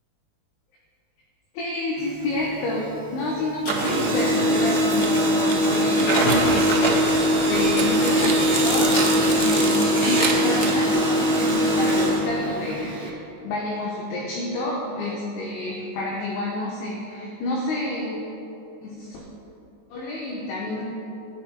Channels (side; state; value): right; late; 19 ms